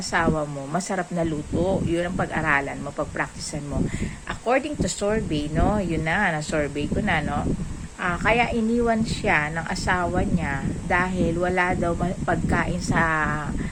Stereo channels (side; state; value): both; identical; correlation 1.00